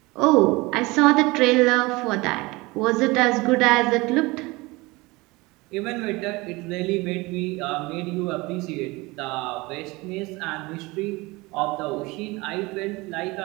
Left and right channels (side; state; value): left; quieter; 23.2 dB